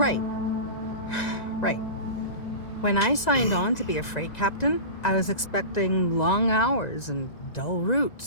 Right. When I signed on to be a freight captain, I was expecting long hours and dull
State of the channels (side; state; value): right; late; 1.9 ms